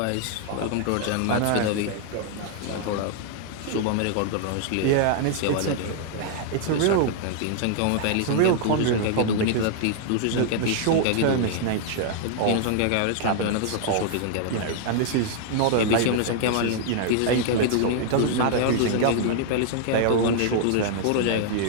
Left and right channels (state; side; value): different; both; correlation 0.00